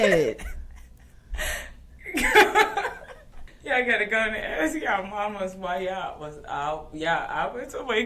at? Y'all gotta go and ask y'all mamas why y'all was out. I went to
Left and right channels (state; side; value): identical; both; correlation 1.00